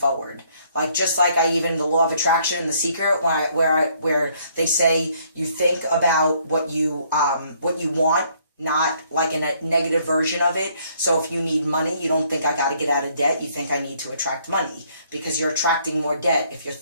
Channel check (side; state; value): both; inverted; correlation -0.65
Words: Like, just like the law of attraction and The Secret, where they say you think about what you want, not like in a negative version of it. So if you need money, you don't think I got to get out of debt. You think I need to attract money, because you're attracting more debt if you're